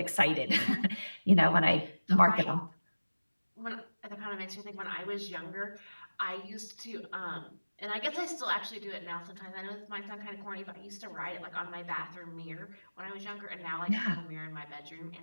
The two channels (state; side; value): inverted; both; correlation -1.00